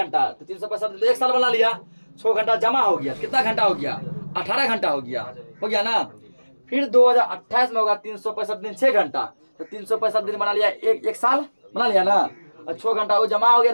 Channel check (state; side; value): inverted; both; correlation -1.00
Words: तो 365 दिन 1 साल बना लिया, 6 घंटा जमा हो गया, कितना घंटा हो गया, 18 घंटा हो गया ना। फिर 2028 में होगा 365 दिन 6 घंटा, तो 365 दिन बना लिया, एक साल बना लिया ना। और 6 घंटा वो जमा हो